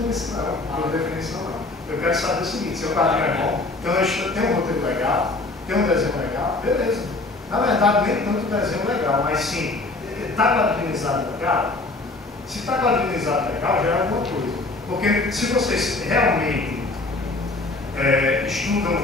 isso não, por definição não. Eu quero saber o seguinte, se o quadrinho é bom, então tem um roteiro legal, tem um desenho legal, beleza. Na verdade, nem tanto desenho legal, mas sim, está quadrinizado legal? Se está quadrinizado legal, já é alguma coisa. Porque se vocês realmente estudam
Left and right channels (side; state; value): right; quieter; 3.1 dB